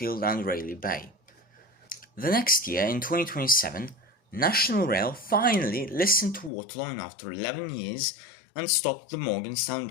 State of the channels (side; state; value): right; drops out; at 6.5 s